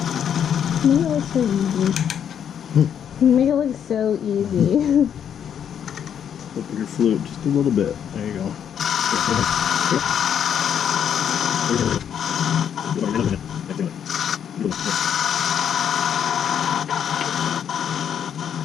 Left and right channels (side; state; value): right; quieter; 8.7 dB